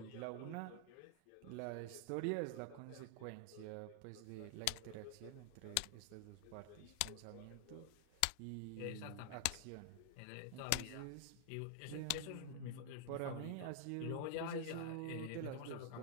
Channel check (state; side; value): different; both; correlation 0.00